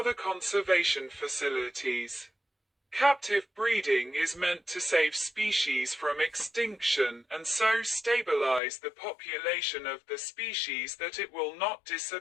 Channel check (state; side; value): drops out; right; at 8.6 s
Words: conservation facilities. Captive breeding is meant to save species from extinction and so stabilize the population of the species that it will not